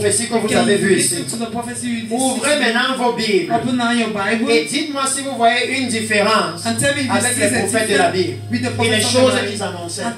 que vous avez vues ici. Listen to the prophecy you did. Ouvrez maintenant vos Bibles. Open now your Bible. Et dites-moi si vous voyez une différence And tell me if you avec see les the prophètes de la Bible with the et les prophets of choses the qu'ils Bible annonçaient. and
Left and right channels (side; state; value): both; identical; correlation 1.00